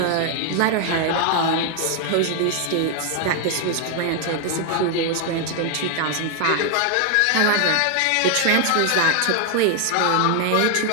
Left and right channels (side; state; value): both; different; correlation 0.00